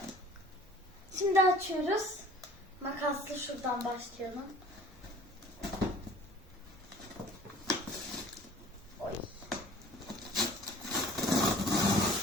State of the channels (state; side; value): normal; both; correlation 0.48